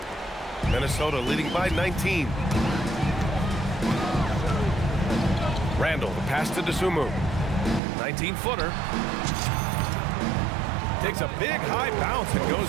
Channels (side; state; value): left; drops out; at 7.8 s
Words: Minnesota leading by 19. Randle, the pass to Dosunmu. 19-footer. Takes a big high bounce and